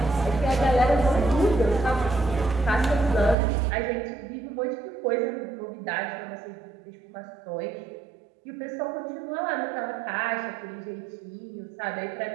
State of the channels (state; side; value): drops out; left; at 3.4 s